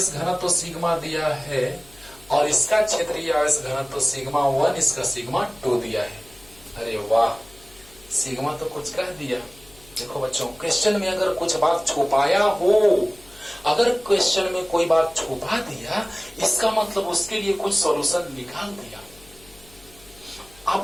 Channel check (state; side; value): noise; left; hum, 25 dB below the sound